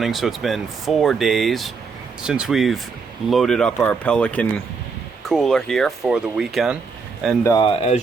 so it's been 4 days since we've loaded up our Pelican cooler here for the weekend. And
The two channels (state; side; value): quieter; left; 5.0 dB